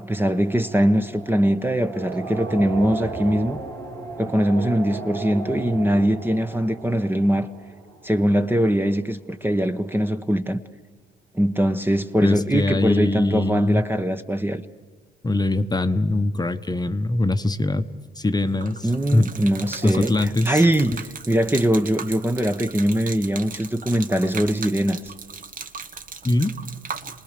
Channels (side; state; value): both; normal; correlation 0.90